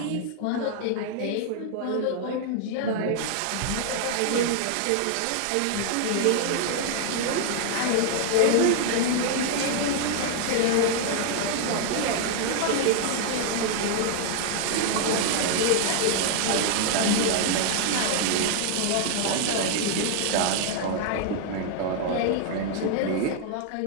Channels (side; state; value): both; different; correlation 0.00